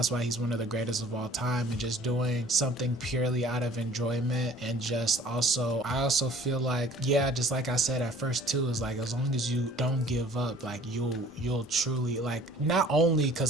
why he's one of the greatest of all time. And just doing something purely out of enjoyment, and just also, I also feel like, yeah, just like I said at first too, is like as long as you don't give up, like you'll truly, like, not only,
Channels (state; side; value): normal; both; correlation 0.51